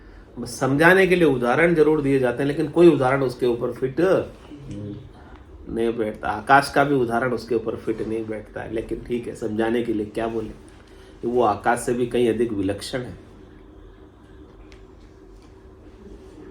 बस समझाने के लिए उदाहरण जरूर दिए जाते हैं, लेकिन कोई उदाहरण उसके ऊपर फिट नहीं बैठता। आकाश का भी उदाहरण उसके ऊपर फिट नहीं बैठता है, लेकिन ठीक है, समझाने के लिए क्या बोले, वो आकाश से भी कहीं अधिक विलक्षण है।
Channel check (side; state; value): both; identical; correlation 1.00